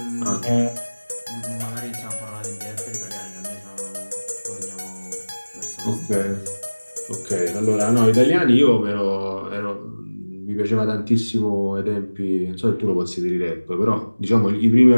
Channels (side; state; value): both; inverted; correlation -1.00